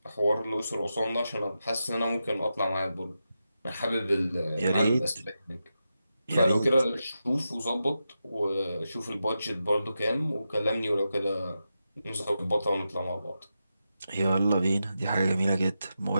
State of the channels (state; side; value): inverted; both; correlation -0.89